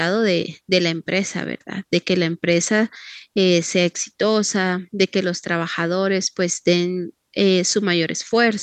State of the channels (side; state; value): both; identical; correlation 1.00